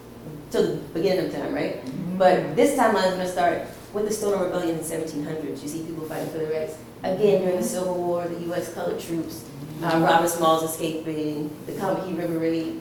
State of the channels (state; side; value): identical; both; correlation 1.00